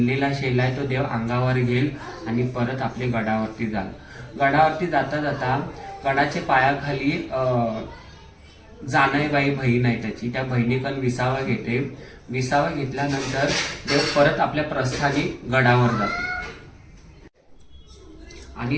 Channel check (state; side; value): identical; both; correlation 1.00